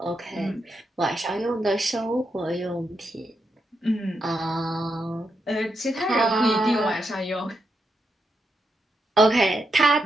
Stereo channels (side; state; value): both; normal; correlation 0.83